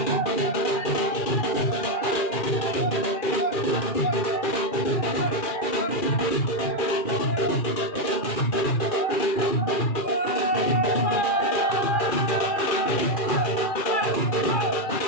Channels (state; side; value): late; right; 2.4 ms